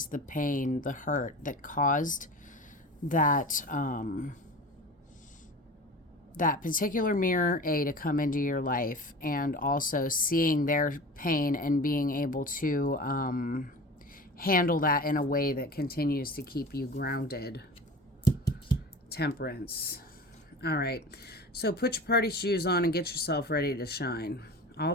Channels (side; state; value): both; normal; correlation 0.36